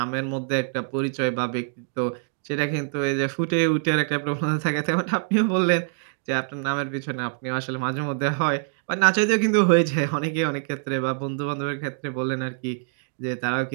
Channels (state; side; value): silent; left; digital silence